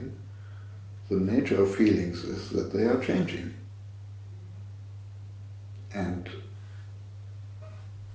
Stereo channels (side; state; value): both; identical; correlation 1.00